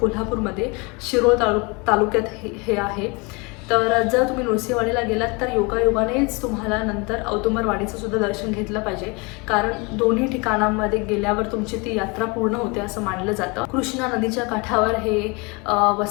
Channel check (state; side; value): quieter; right; 28.7 dB